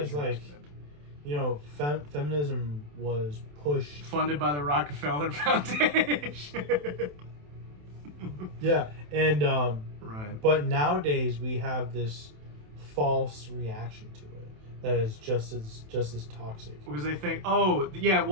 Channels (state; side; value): late; left; 27 ms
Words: like, you know, feminism was pushed, funded by the Rockefeller Foundation. Yeah, and right. But nowadays we have this false reaction to it that is just as toxic. Because they think, oh yeah,